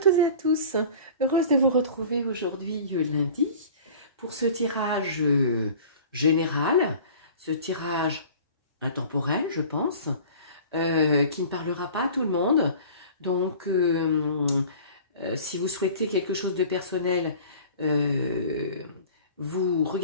et à tous, heureuse de vous retrouver aujourd'hui lundi pour ce tirage général, ce tirage intemporel je pense, qui ne parlera pas à tout le monde. Donc si vous souhaitez quelque chose de personnel, vous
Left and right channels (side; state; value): both; inverted; correlation -0.43